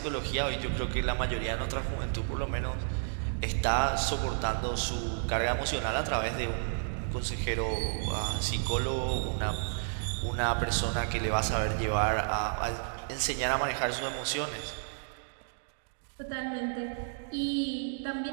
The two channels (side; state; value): left; silent; digital silence